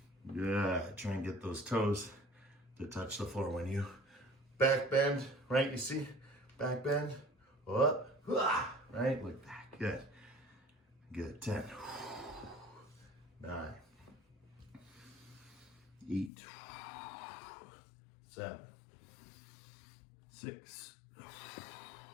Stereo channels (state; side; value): drops out; right; at 16.3 s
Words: Good. Try and get those toes to touch the floor when you back bend, right? You see? Back bend, up, right? Like that. Good. Good. 10, 9, 8, 7, 6,